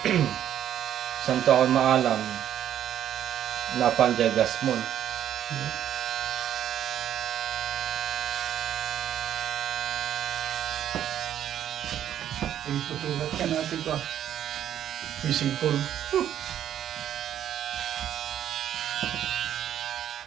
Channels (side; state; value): left; quieter; 10.6 dB